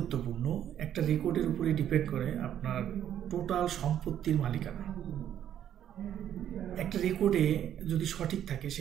একটা রেকর্ডের উপরে ডিপেন্ড করে আপনার টোটাল সম্পত্তির মালিকানা। একটা রেকর্ডে যদি সঠিক থাকে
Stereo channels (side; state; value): left; quieter; 10.4 dB